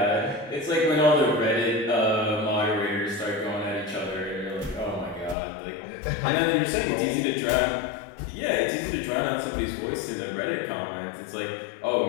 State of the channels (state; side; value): drops out; right; at 5.4 s